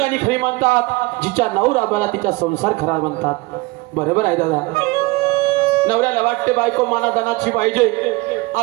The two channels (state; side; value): quieter; left; 23.2 dB